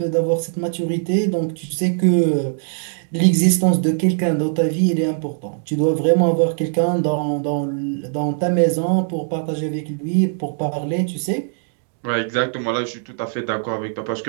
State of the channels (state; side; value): silent; left; digital silence